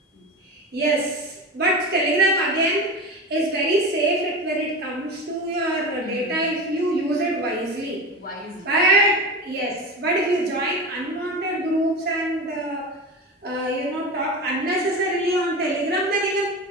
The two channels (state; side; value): normal; both; correlation 0.26